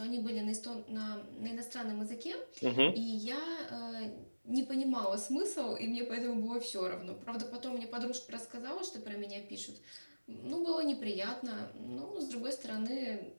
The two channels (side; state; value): both; inverted; correlation -1.00